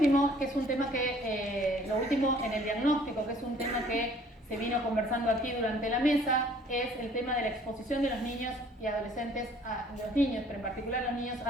que es un tema que, lo último en el diagnóstico, que es un tema que se vino conversando aquí durante la mesa, es el tema de la exposición de los niños y adolescentes, los niños, pero en particular los niños,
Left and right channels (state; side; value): normal; both; correlation 0.56